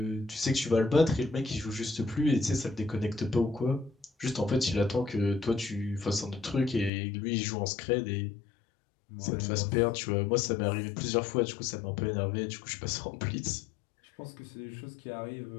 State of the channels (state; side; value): drops out; right; at 6.9 s